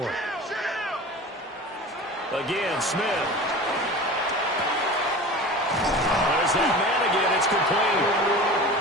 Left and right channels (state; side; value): normal; both; correlation 0.36